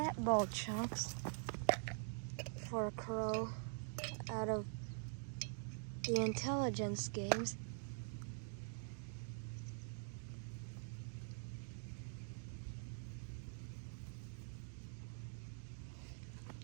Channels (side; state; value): left; silent; digital silence